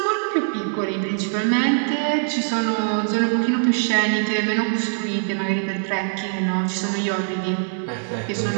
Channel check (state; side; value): silent; left; digital silence